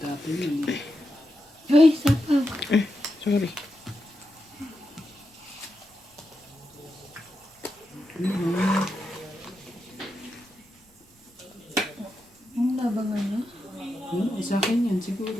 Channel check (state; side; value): normal; both; correlation 0.87